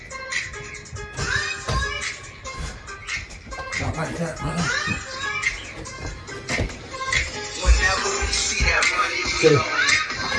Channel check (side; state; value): both; identical; correlation 1.00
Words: not like that, brother. Okay,